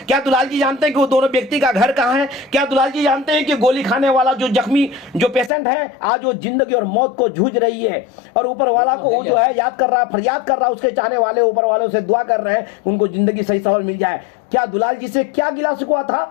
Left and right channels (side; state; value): right; drops out; at 5.5 s